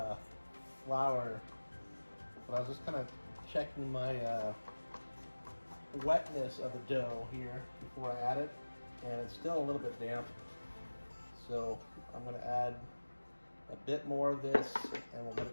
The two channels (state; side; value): inverted; both; correlation -1.00